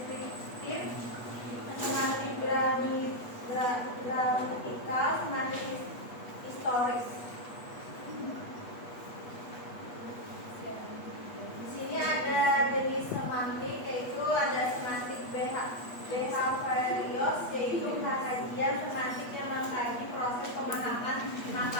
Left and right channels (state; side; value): late; right; 8.2 ms